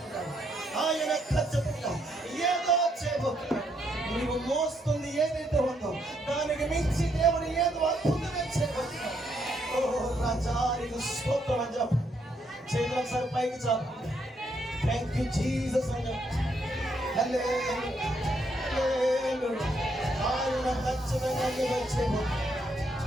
ఆయన ఖచ్చితంగా ఏదో చేయబోతున్నాడు. నీవు మోస్తుంది ఏదైతే ఉందో దానికి మించి దేవుడు ఏదో అద్భుతమే చేయబోతున్నాడు. ఓ రాజా నీకు స్తోత్రం అని చెప్పండి. చేతులు ఒకసారి పైకి చెప్పండి. థ్యాంక్ యూ జీసస్ అని చెప్పండి. ఆయన ఖచ్చితంగా ఏదో చేయబోతున్నాడు.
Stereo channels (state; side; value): normal; both; correlation 0.75